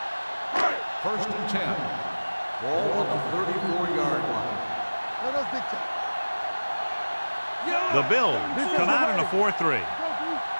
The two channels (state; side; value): inverted; both; correlation -1.00